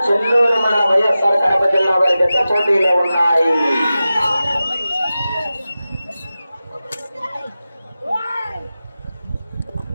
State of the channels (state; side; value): inverted; both; correlation -0.94